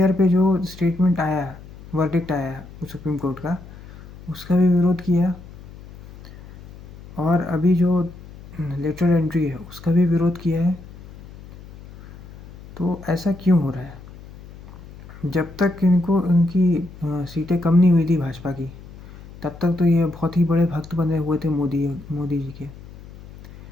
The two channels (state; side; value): noise; left; hum, 18 dB below the sound